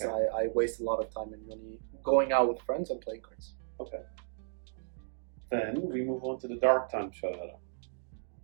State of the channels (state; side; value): silent; left; digital silence